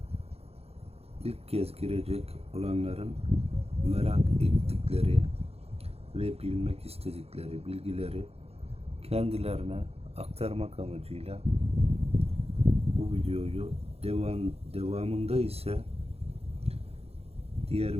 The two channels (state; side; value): late; left; 0.29 ms